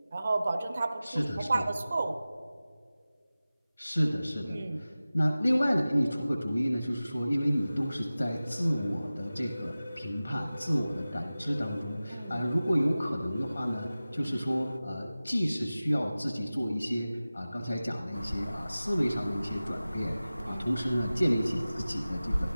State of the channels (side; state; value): both; inverted; correlation -0.97